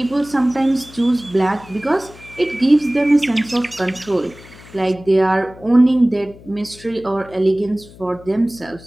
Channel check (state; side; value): noise; left; hum, 21 dB below the sound